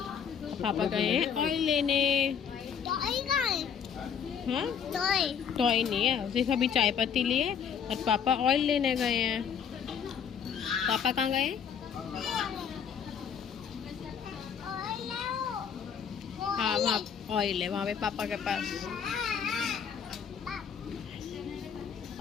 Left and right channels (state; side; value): quieter; right; 7.5 dB